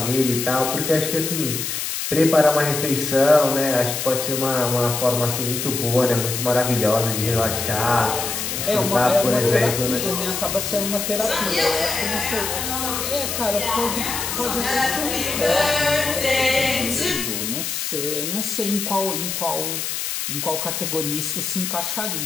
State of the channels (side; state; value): left; noise; hiss, 3 dB below the sound